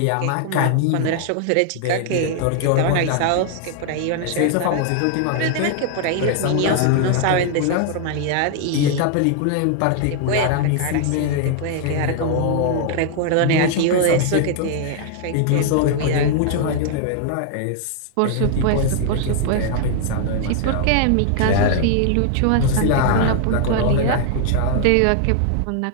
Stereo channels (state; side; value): different; both; correlation 0.00